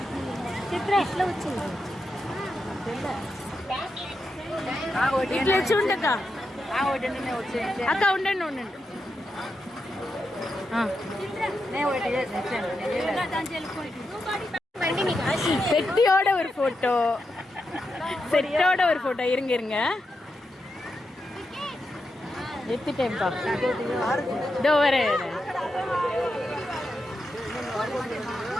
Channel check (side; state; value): both; normal; correlation 0.87